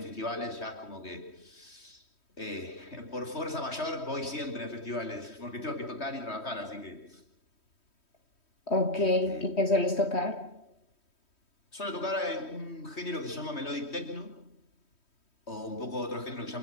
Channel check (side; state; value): right; late; 3.1 ms